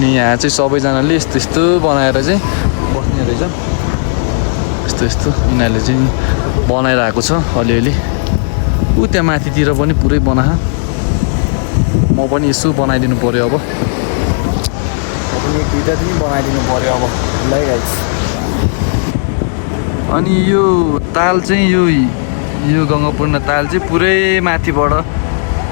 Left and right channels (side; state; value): right; silent; digital silence